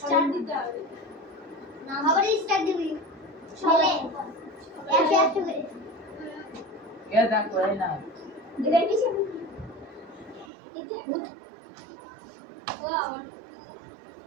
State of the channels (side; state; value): left; drops out; at 10.5 s